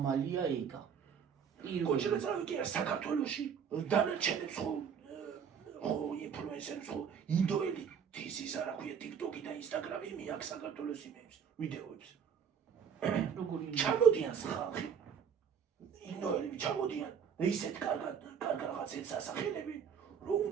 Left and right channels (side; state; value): left; quieter; 7.5 dB